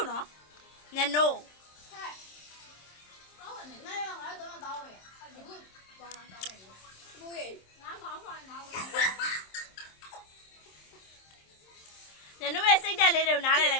呢？你喏。ညနိုးရဲ့စိတ်တက်လေးတွေကိုနားလည်လို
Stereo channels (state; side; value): late; right; 27 ms